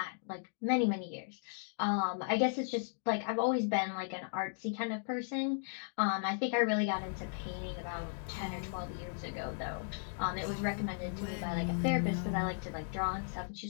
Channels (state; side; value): silent; right; digital silence